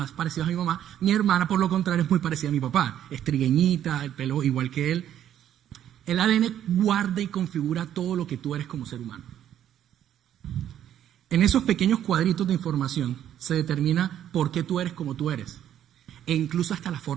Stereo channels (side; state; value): left; quieter; 10.8 dB